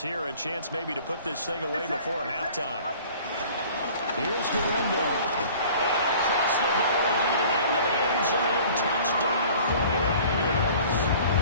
a chance maybe to put this thing away before halftime. Here's Guerrero. And across the goal line, into the end zone, touchdown 49ers.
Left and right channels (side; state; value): both; inverted; correlation -0.48